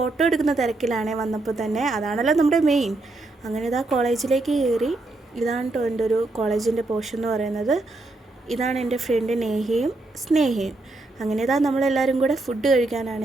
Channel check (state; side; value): quieter; left; 3.0 dB